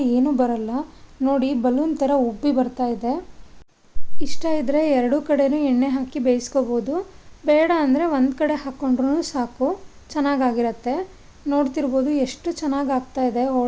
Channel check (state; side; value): identical; both; correlation 1.00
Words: ಏನೂ ಬರಲ್ಲ. ನೋಡಿ ಬಲೂನ್ ಥರ ಉಬ್ಬಿ ಬರ್ತಾ ಇದೆ. ಇಷ್ಟ ಇದ್ದರೆ ಎರಡೂ ಕಡೆನೂ ಎಣ್ಣೆ ಹಾಕಿ ಬೇಯಿಸ್ಕೋಬೋದು. ಬೇಡ ಅಂದರೆ ಒಂದು ಕಡೆ ಹಾಕ್ಕೊಂಡ್ರೂ ಸಾಕು, ಚೆನ್ನಾಗಾಗಿರುತ್ತೆ. ನೋಡ್ತಿರ್ಬೋದು ಎಷ್ಟು ಚೆನ್ನಾಗಿ ಆಗ್ತಾ ಇದೆ